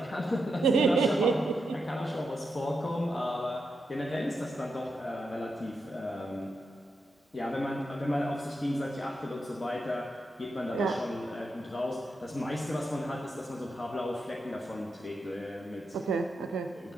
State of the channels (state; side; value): normal; both; correlation 0.85